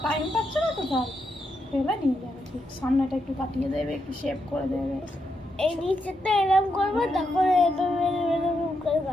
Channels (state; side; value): normal; both; correlation 0.82